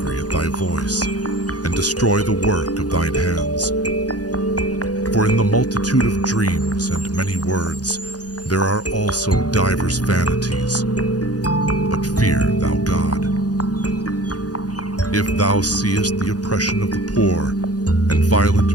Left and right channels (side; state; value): right; late; 0.68 ms